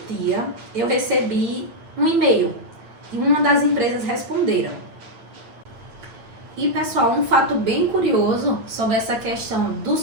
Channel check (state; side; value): late; left; 8.9 ms